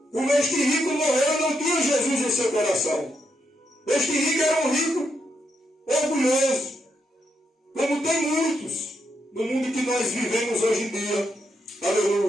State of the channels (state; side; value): normal; both; correlation 0.81